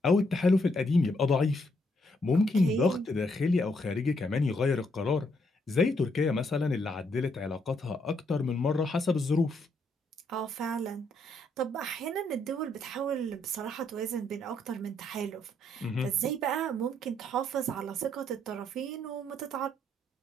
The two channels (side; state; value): both; normal; correlation 0.73